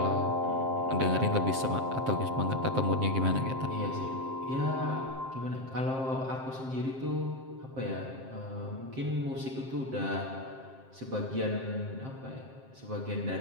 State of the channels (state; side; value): late; left; 7.6 ms